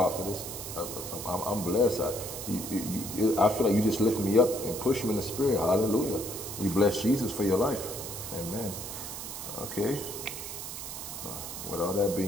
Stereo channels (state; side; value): noise; right; hiss, 8 dB below the sound